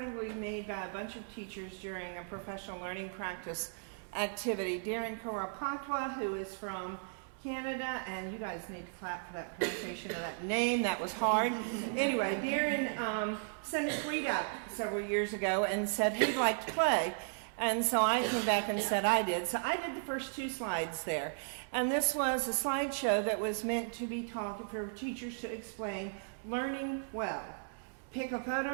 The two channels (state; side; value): silent; left; digital silence